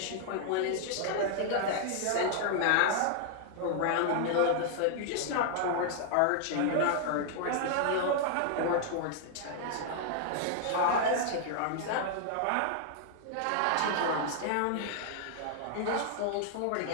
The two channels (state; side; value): different; both; correlation -0.01